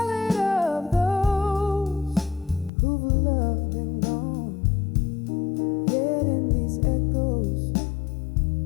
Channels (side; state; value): right; drops out; at 2.7 s